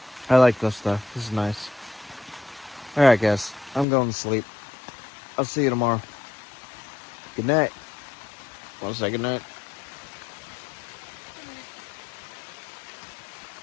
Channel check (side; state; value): right; drops out; at 3.9 s